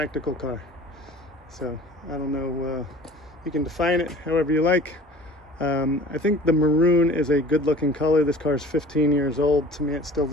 car. So I don't know, you can define it however you like. I think the maroon is a good looking color. This car is 15 years old. To me, it still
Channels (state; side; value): normal; both; correlation 0.44